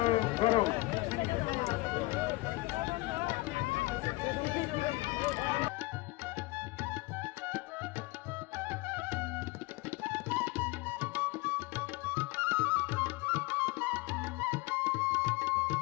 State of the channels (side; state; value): right; quieter; 22.0 dB